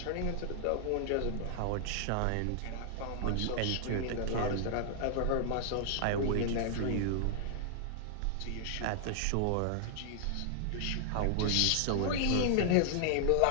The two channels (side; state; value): both; different; correlation 0.00